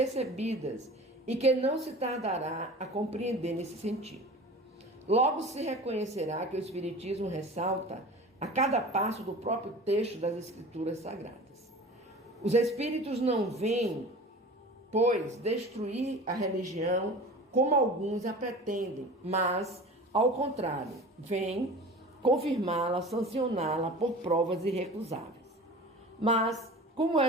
e que não se tardará a compreender nesse sentido. Logo se reconhecerá que o Espiritismo ressalta a cada passo do próprio texto das Escrituras Sagradas. Os Espíritos não vêm, pois, destruir a religião como alguns a pretendem, mas, ao contrário, vêm confirmá-la, sancioná-la por provas irrecusáveis. Mas, como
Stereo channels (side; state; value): both; normal; correlation 0.38